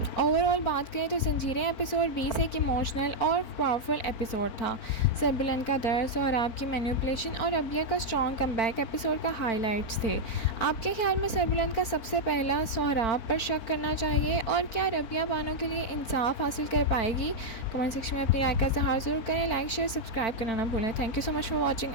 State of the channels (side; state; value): right; late; 4.4 ms